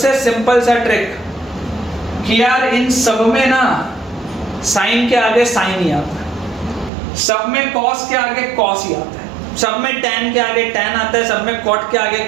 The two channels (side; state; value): left; drops out; at 6.9 s